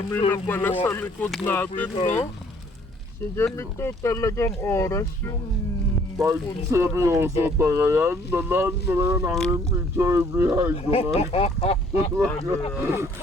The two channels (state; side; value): normal; both; correlation 0.60